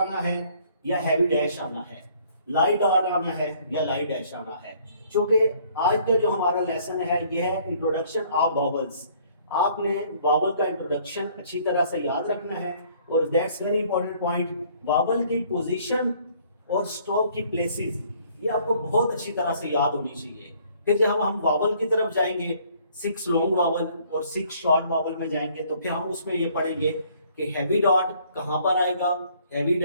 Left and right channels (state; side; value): inverted; both; correlation -0.60